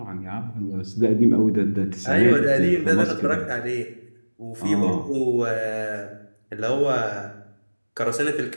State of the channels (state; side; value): inverted; both; correlation -1.00